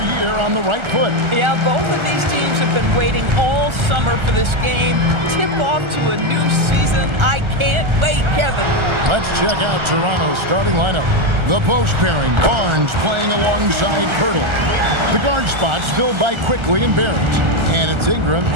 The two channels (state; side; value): late; left; 1.4 ms